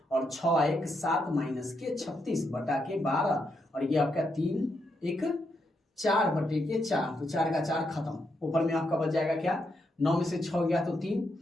और 6 1 7 माइनस के 36 बटा के 12 और ये आपका 3 1 4/4 तो 4 का 4 खत्म, ऊपर में आपका बच जाएगा क्या 9 में से 6 गया तो 3,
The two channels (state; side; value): normal; both; correlation 0.81